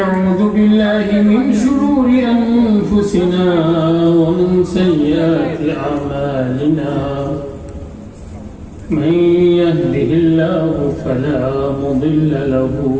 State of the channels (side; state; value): both; identical; correlation 1.00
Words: بالله من شرور أنفسنا ومن سيئات أعمالنا من يهده الله فلا مضل له